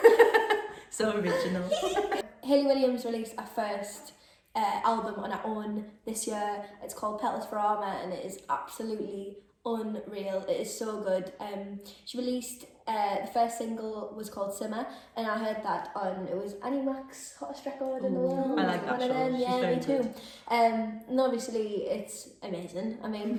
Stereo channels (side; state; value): both; identical; correlation 1.00